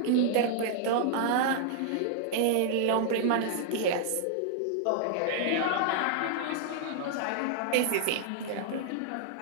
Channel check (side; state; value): both; different; correlation -0.01